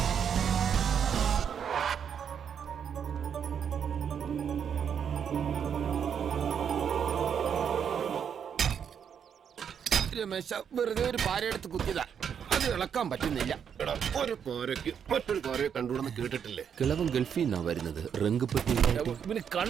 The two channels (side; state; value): left; quieter; 7.8 dB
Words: രമേശ വെറുതെ ഒരു പാരയെടുത്ത് കുത്തിയതാ, അത് ഇളക്കാൻ പറ്റുന്നില്ല. ഒരു കോരയ്ക്ക് മറ്റൊരു കോരയെ കണ്ടുകൂടെന്ന് കേട്ടിട്ടില്ലേ? കിളവൻ ഗൾഫിൽ നിന്നാ വരുന്നത്. റംഗപ്പെട്ടി പിന്നെ